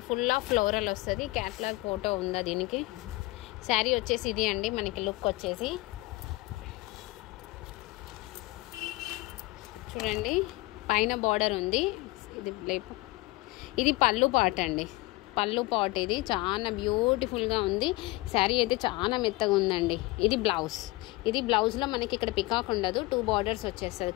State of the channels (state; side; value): quieter; right; 21.8 dB